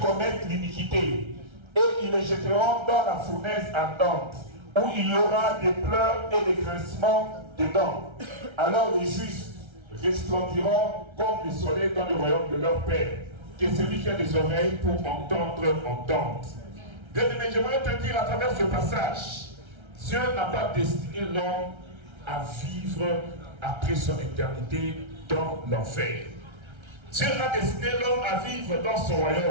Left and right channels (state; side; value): late; left; 1.3 ms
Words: l'iniquité, et ils les jetteront dans la fournaise ardente, où il y aura des pleurs et des grincements de dents. Alors les justes resplendiront comme le soleil dans le royaume de leur Père. Que celui qui a des oreilles pour entendre, entende. Bien-aimé, j'aimerais te dire à travers ce passage, Dieu n'a pas destiné l'homme à vivre après son éternité dans l'enfer. Dieu a destiné l'homme à vivre dans son